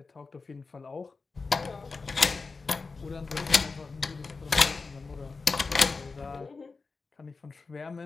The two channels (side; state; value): right; quieter; 4.2 dB